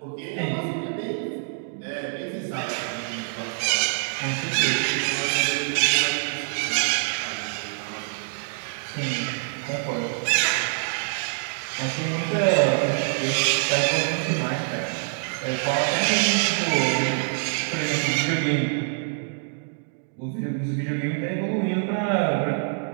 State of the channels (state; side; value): silent; left; digital silence